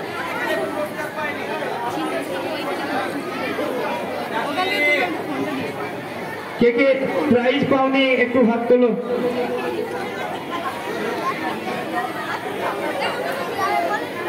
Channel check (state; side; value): identical; both; correlation 1.00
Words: কে কে প্রাইজ পাওনি একটু হাত তোলো।